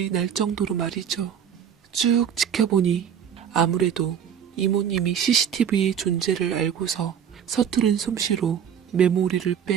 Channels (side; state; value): left; quieter; 8.4 dB